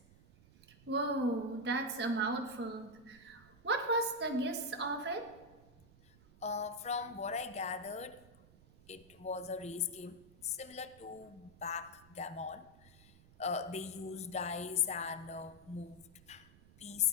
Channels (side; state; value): right; noise; rumble, 24 dB below the sound